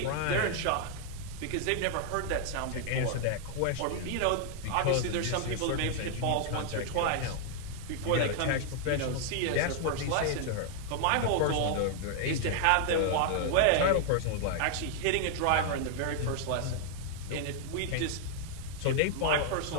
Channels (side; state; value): both; different; correlation 0.00